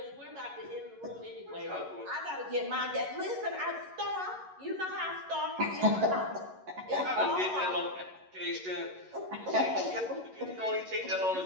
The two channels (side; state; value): left; late; 11 ms